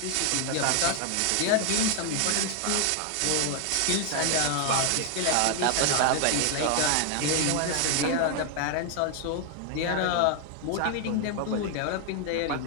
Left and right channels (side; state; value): both; different; correlation 0.00